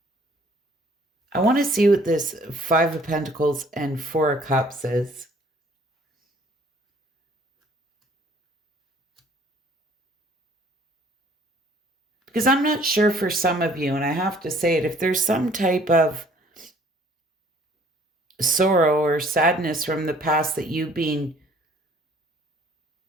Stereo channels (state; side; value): normal; both; correlation 0.57